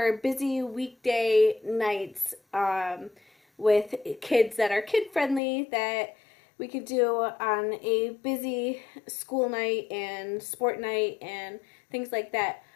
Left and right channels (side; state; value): right; drops out; at 5.4 s